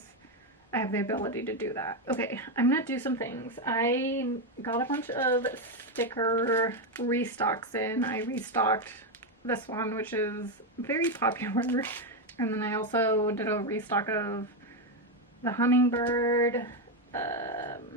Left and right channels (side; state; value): both; normal; correlation 0.07